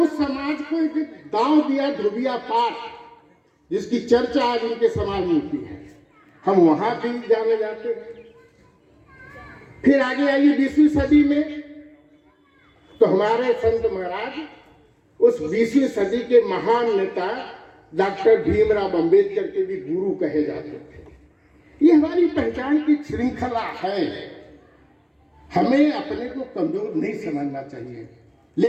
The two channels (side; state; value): both; identical; correlation 1.00